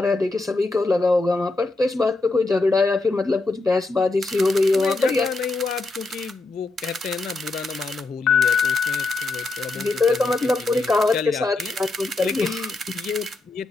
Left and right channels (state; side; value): quieter; right; 3.3 dB